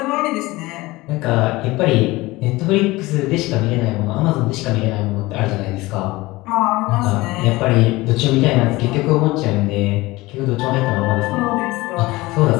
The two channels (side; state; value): right; quieter; 20.4 dB